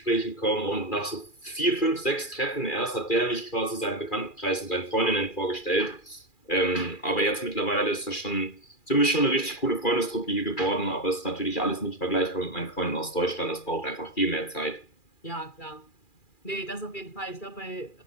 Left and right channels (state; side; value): late; right; 2.4 ms